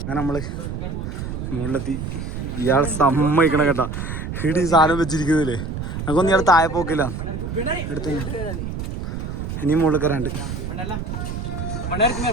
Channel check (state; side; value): noise; right; rumble, 5 dB below the sound